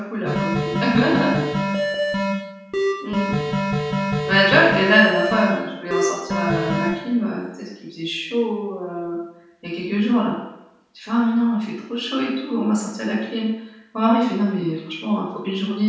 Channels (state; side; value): identical; both; correlation 1.00